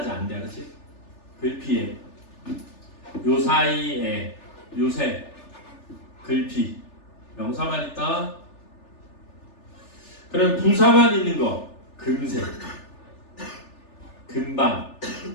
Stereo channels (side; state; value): right; late; 3.4 ms